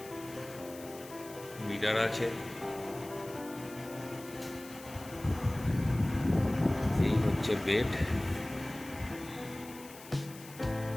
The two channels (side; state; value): left; noise; hiss, 17 dB below the sound